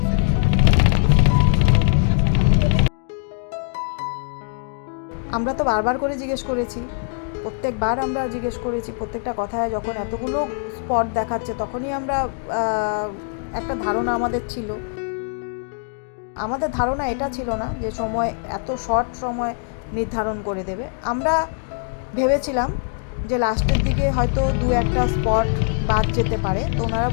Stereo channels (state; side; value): silent; right; 57 dB below the other